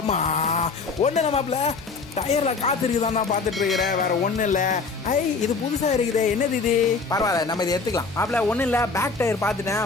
ஒண்ணு நம்மள டயர்ல காத்து இருக்குதான் தான் பார்த்துட்டு இருக்கிறேன், வேற ஒன்றும் இல்லை. இது புதுசா இருக்குது, என்னது இது? பரவாயில்ல, நம்ம இதை எடுத்துக்கலாம். மாப்பிள்ள ஒன்றும் இல்லை, பேக் டயர்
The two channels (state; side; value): quieter; right; 4.4 dB